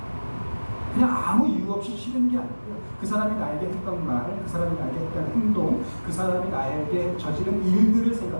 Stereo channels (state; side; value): inverted; both; correlation -1.00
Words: 그냥 아무 이유 없이 싫은 게 아니고요. 그 사람이 나에게 했던 말, 그 사람이 나에게 했던 행동, 그 사람이 나에게 저지른 일들을